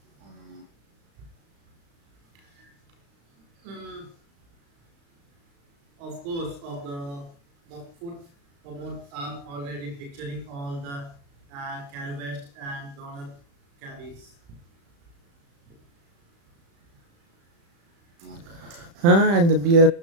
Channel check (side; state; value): left; late; 35 ms